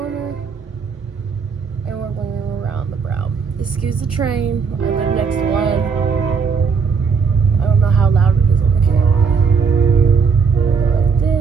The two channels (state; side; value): quieter; left; 5.6 dB